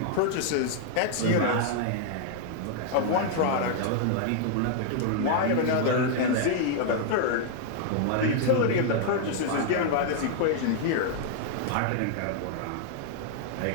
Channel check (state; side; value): different; both; correlation -0.01